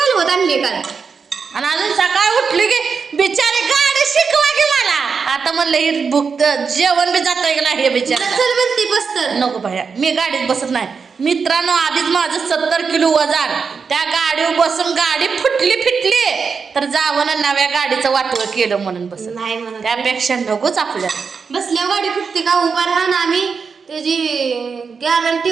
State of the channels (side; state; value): left; quieter; 5.5 dB